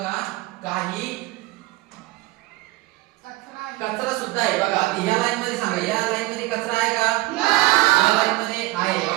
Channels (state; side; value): quieter; left; 19.4 dB